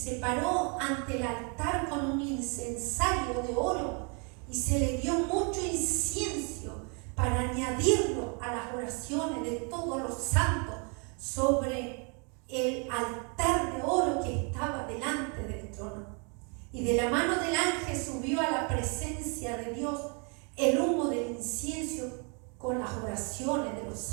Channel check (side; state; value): left; quieter; 35.7 dB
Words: paró ante el altar con un incensario de oro, y se le dio mucho incienso para añadirlo a las oraciones de todos los santos sobre el altar de oro que estaba delante del trono. Y de la mano del ángel subió a la presencia de Dios el humo del incienso con las oraciones de los